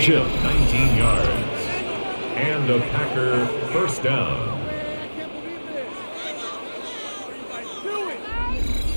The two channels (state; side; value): inverted; both; correlation -1.00